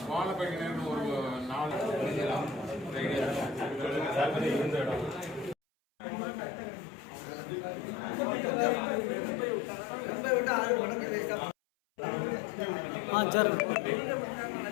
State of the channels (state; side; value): drops out; right; at 5.6 s